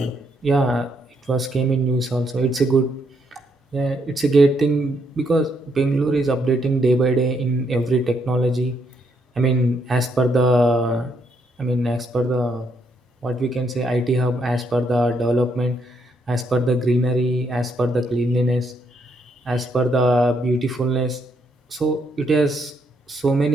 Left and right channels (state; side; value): normal; both; correlation 0.75